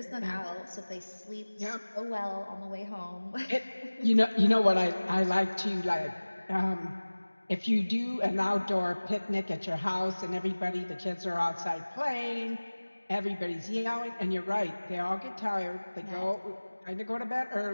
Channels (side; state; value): both; inverted; correlation -1.00